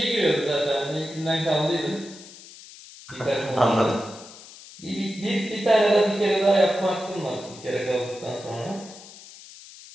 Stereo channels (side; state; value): left; noise; hiss, 18 dB below the sound